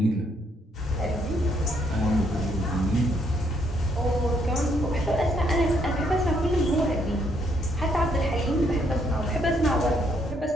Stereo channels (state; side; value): normal; both; correlation 0.71